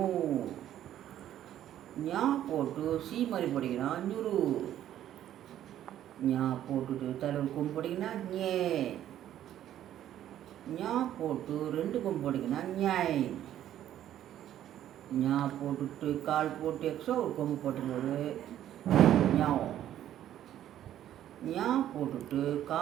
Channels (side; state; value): left; quieter; 11.7 dB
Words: ஞா போட்டு சீ மாதிரி போட்டிங்கன்னா நியூரு. ஞா போட்டுட்டு தலைவர் கொம்பு போட்டிங்கன்னா ஞே. ஞா போட்டு 2 கொம்பு போட்டிங்கன்னா ஞாய். ஞா போட்டுட்டு கால் போட்டு எக்ஸ்ட்ரா ஒரு கொம்பு போட்டும்போது ஞாவ். ஞா போட்டுட்டு